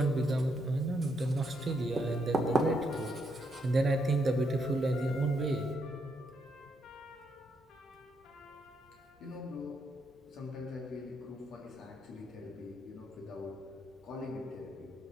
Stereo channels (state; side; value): normal; both; correlation 0.77